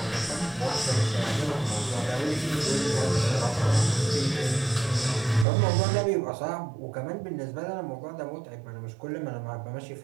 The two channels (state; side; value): drops out; left; at 5.5 s